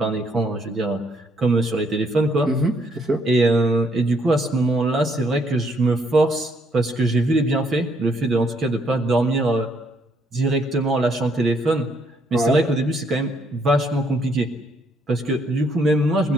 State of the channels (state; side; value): normal; both; correlation 0.70